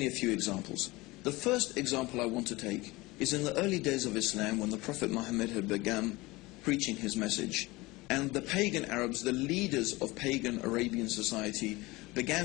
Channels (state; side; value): quieter; right; 21.6 dB